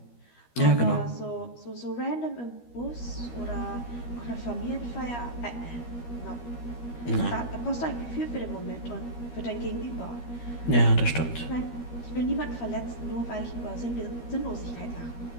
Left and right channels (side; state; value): right; late; 13 ms